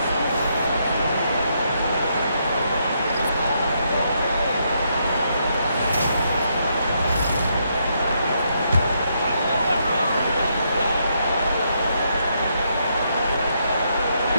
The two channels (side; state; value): both; inverted; correlation -0.77